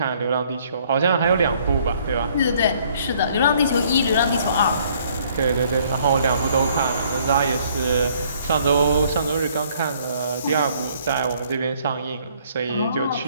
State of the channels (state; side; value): inverted; both; correlation -0.62